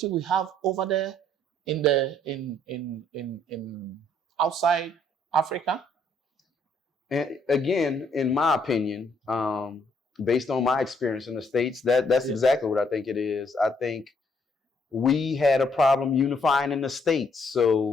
we have over there in outside Africa? And again, in my opinion, based on my experience in the States, that's exactly what I think it is. I think we had a problem unifying in the States.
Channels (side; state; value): both; normal; correlation 0.68